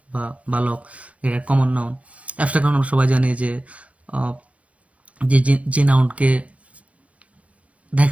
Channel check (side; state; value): left; late; 0.064 ms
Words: বা বালক, এটা কমন নাউন। অ্যাবস্ট্রাক্ট নাউন আমরা সবাই জানি যে আহ, যে যে যে নাউনকে